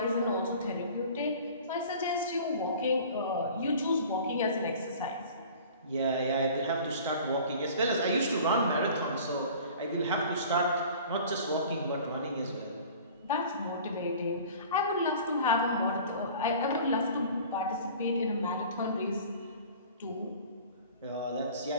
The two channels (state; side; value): inverted; both; correlation -0.44